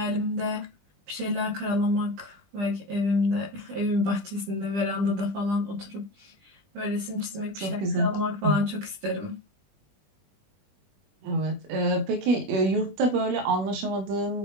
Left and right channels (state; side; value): late; left; 20 ms